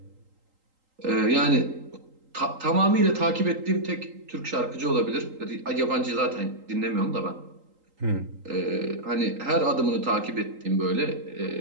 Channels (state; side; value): late; left; 3.8 ms